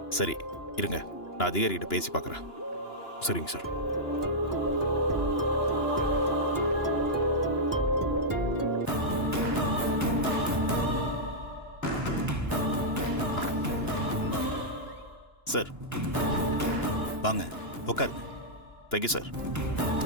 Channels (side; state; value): right; late; 2.9 ms